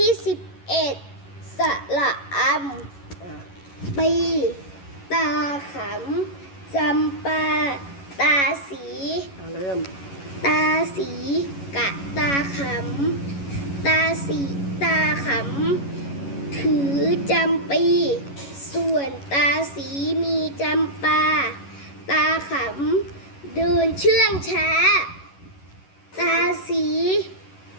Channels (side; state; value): right; late; 11 ms